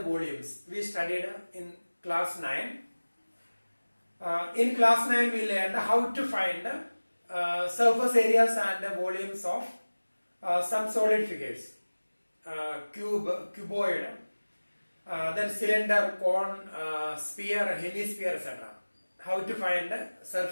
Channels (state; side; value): inverted; both; correlation -1.00